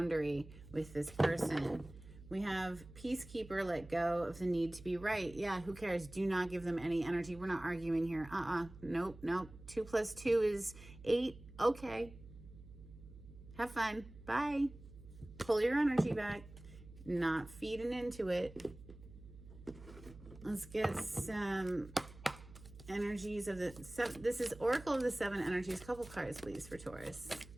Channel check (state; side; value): noise; right; hum, 18 dB below the sound